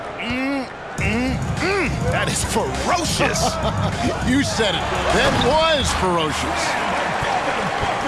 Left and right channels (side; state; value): both; identical; correlation 1.00